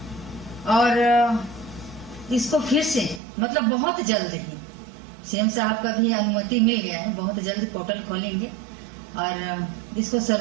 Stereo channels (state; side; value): drops out; left; at 3.2 s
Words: और इसको फिर से मतलब बहुत जल्द ही सीएम साहब का भी अनुमति मिल गया है। बहुत जल्द पोर्टल खोलेंगे और इसको